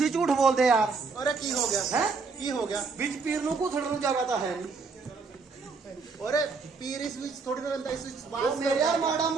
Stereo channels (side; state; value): left; quieter; 4.6 dB